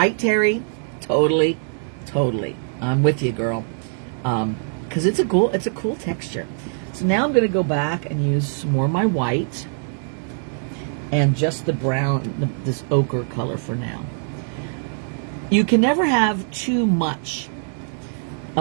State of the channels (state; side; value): silent; left; digital silence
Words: Terry? Totally, totally. I'm with you, girl. Because it's a cool texture. So now I'm going to go back and use some more of my white and just the brown, this ochre color for now. You can never have too much